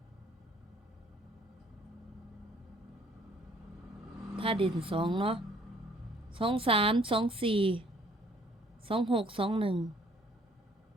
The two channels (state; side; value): normal; both; correlation 0.60